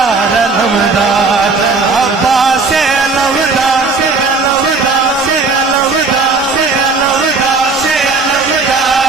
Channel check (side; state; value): left; quieter; 4.1 dB